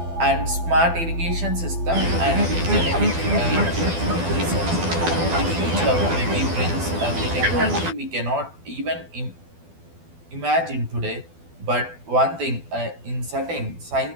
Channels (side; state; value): left; late; 12 ms